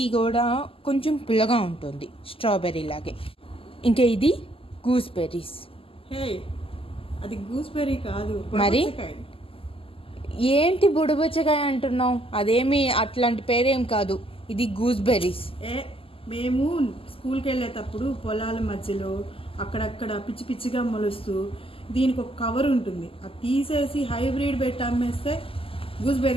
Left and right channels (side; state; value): right; late; 0.26 ms